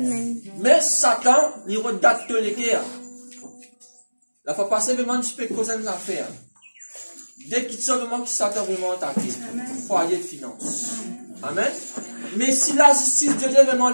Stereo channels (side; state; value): both; inverted; correlation -1.00